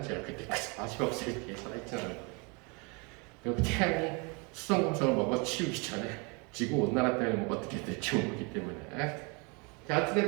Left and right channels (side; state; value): left; quieter; 31.0 dB